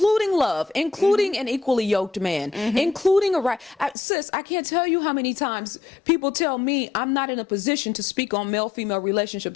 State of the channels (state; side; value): drops out; right; at 4.0 s